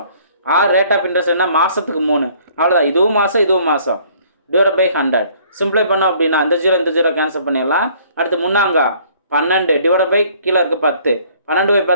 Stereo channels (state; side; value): inverted; both; correlation -0.58